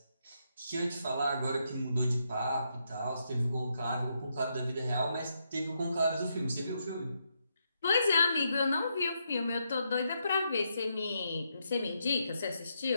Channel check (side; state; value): both; inverted; correlation -0.80